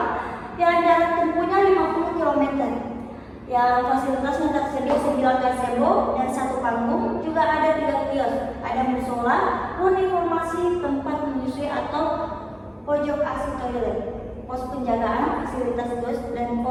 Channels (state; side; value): identical; both; correlation 1.00